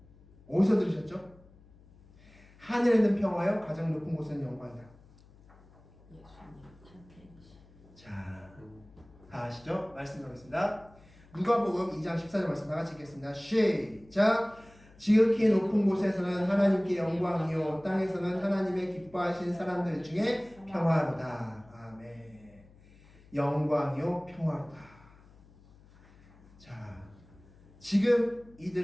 어디서 들으셨죠? 하늘에는 평화여 가장 높은 곳에는 영광이다. 자, 다 아시죠? 말씀 나오겠습니다. 누가복음 2장 14절 말씀 다 같이 읽겠습니다. 시작! 지극히 높은 곳에서는 하나님께 영광이요 땅에서는 하나님의 기뻐하신 사람들 중에 평화로다. 아멘. 영광이요 평화로다. 자, 지금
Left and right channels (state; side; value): noise; left; hum, 25 dB below the sound